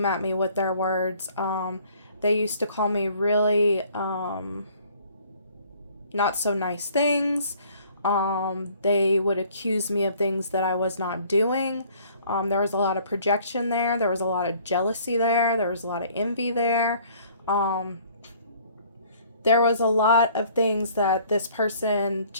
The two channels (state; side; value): inverted; both; correlation -0.57